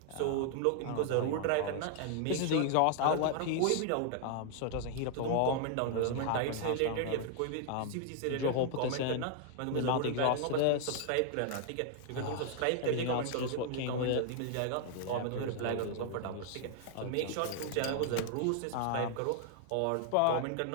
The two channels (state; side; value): different; both; correlation 0.00